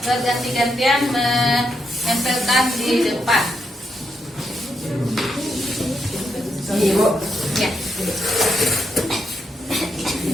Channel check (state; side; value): normal; both; correlation 0.81